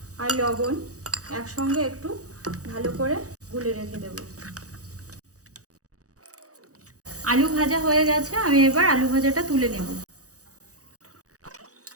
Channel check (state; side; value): late; left; 0.66 ms